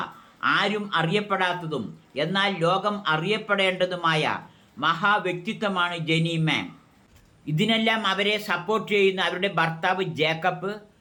ആരും അറിയപ്പെടാത്തതും എന്നാൽ ലോകം അറിയപ്പെടേണ്ടതുമായ മഹാവ്യക്തിത്വമാണ് ജെനി മാം. ഇതിനെല്ലാം അവരെ സപ്പോർട്ട് ചെയ്യുന്ന അവരുടെ ഭർത്താവ് ജേക്കബ്,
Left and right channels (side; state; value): both; identical; correlation 1.00